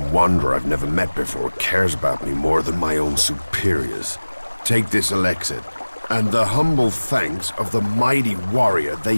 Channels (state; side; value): inverted; both; correlation -1.00